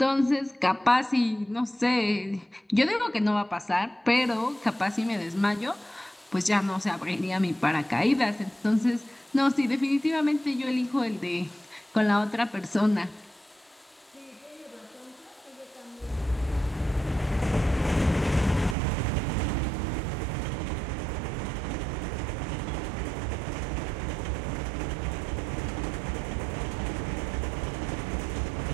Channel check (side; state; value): left; drops out; at 18.8 s